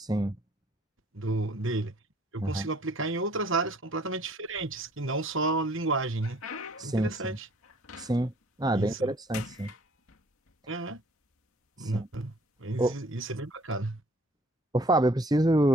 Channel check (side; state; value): both; normal; correlation 0.57